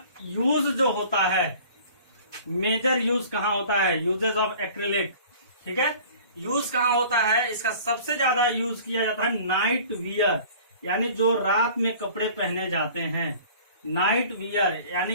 यूज जो होता है, मेजर यूज कहाँ होता है, यूजेस ऑफ एक्रिलिक। ठीक है, यूज कहाँ होता है, इसका सबसे ज्यादा यूज किया जाता है नाइट वियर, यानी जो रात में कपड़े पहने जाते हैं। नाइट वियर यानी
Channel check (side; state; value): both; inverted; correlation -0.47